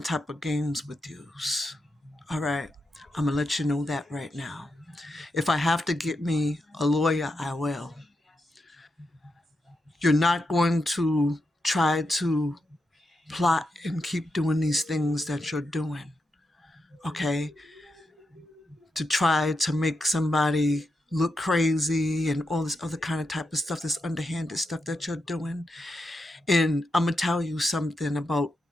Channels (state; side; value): normal; both; correlation 0.86